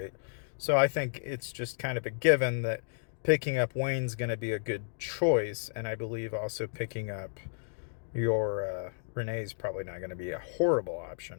So I think it's just kind of a given that picking up Wayne's going to be a good choice, and I believe also picking up your Renee's probably not going to be a horrible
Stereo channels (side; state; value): right; silent; digital silence